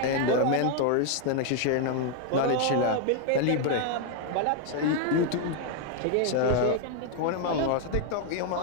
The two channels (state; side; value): different; both; correlation 0.00